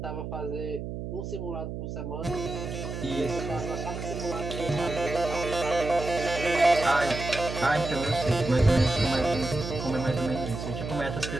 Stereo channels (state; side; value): noise; right; hum, 6 dB below the sound